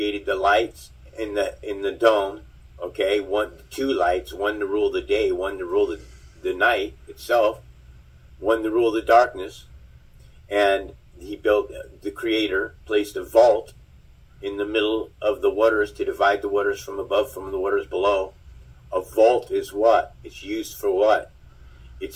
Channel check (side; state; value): both; identical; correlation 1.00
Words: the lights in the dome. Okay, two lights, one to rule the day, one to rule the night itself, one to rule the darkness. And he built, the Creator placed a vault in the middle of the waters to divide the waters from above from the waters below. A vault is what? It's used for what?